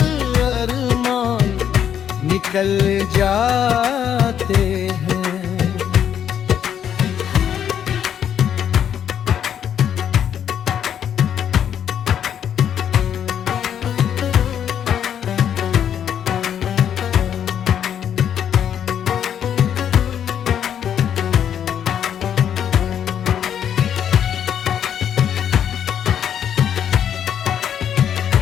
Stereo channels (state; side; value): quieter; right; 9.2 dB